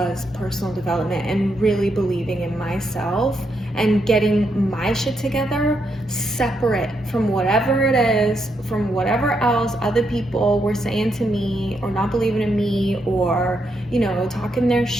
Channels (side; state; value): both; normal; correlation 0.79